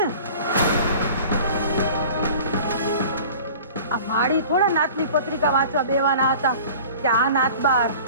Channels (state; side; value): inverted; both; correlation -0.43